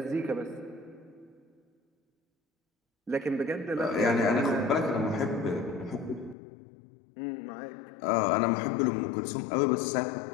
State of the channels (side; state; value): right; drops out; at 6.4 s